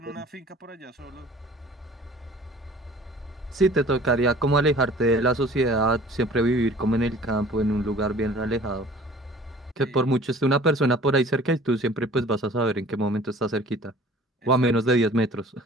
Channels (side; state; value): both; normal; correlation 0.48